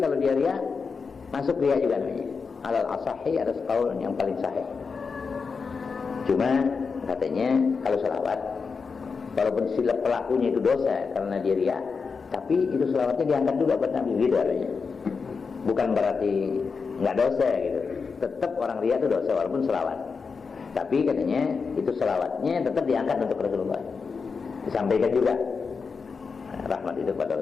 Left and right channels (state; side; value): quieter; right; 5.1 dB